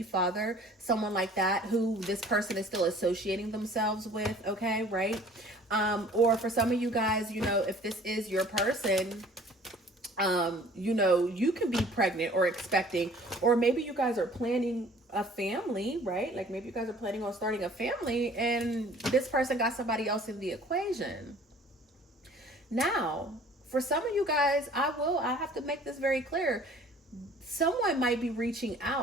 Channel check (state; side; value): normal; both; correlation 0.51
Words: father, someone like that who this person is still associating themselves with, okay, right? Or for some of you guys, you know, if this is your person, you know, you can be pregnant or expecting, or maybe you guys are planning a family, right? Like maybe you guys are planning on starting a family and this person got somebody else in the equation. Now, for some of you guys, I have to make this very clear. Someone might be reaching